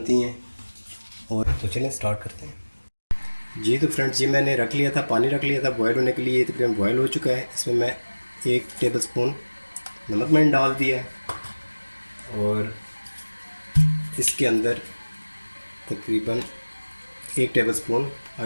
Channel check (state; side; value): inverted; both; correlation -1.00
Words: हैं। और तो चलें स्टार्ट करते हैं। जी तो फ्रेंड्स, ये मैंने रख लिया था, पानी रख लिया था बॉयल होने के लिए। ये तकरीबन बॉयल हो चुका है। इसमें मैं 1 टेबल स्पून नमक मैंने डाल दिया है, और इसके अंदर तकरीबन 1 टेबल स्पून